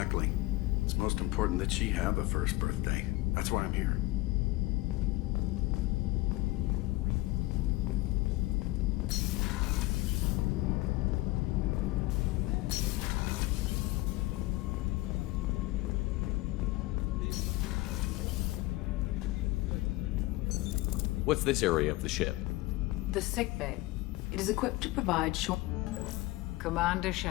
It's most important that she have a first birthday. That's why I'm here. What's this area of the ship? The sickbay. It is equipped to provide short... Commander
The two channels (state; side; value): quieter; right; 19.6 dB